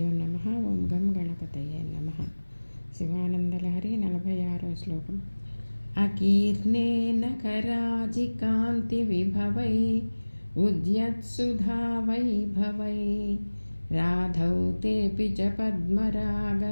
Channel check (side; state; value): both; inverted; correlation -1.00